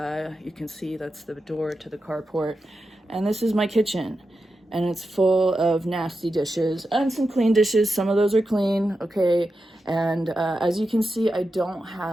can see that's the door to the carport. And this is my kitchen. And it's full of nasty dishes and some clean dishes. Some of those are clean, okay? And as you can see, I don't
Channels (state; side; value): normal; both; correlation 0.90